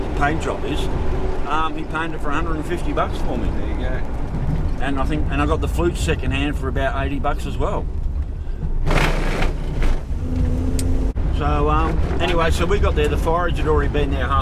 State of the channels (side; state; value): both; identical; correlation 1.00